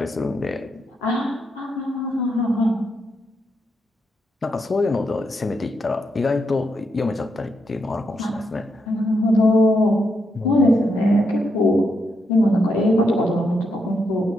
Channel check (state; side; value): normal; both; correlation 0.81